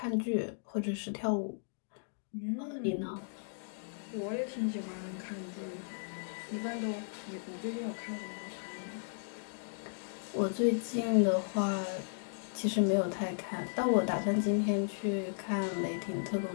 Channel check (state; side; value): silent; right; digital silence